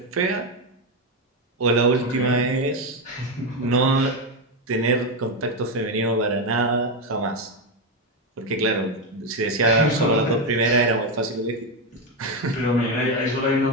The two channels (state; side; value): normal; both; correlation 0.09